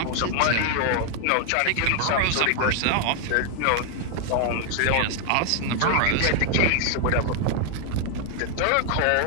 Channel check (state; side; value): different; both; correlation 0.00